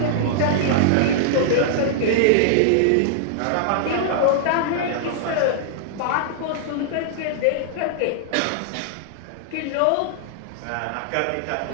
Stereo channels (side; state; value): both; different; correlation -0.01